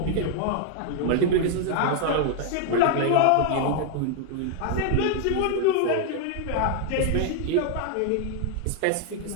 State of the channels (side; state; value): both; different; correlation 0.00